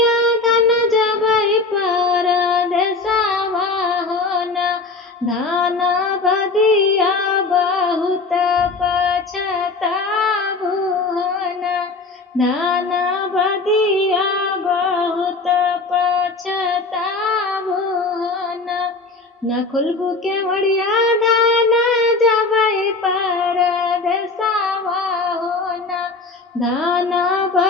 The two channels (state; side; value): quieter; right; 3.8 dB